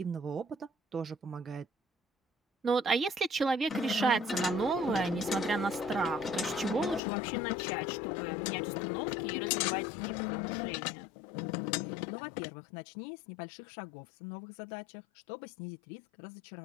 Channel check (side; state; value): right; drops out; at 7.0 s